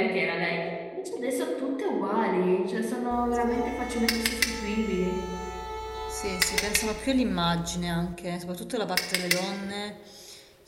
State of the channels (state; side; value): identical; both; correlation 1.00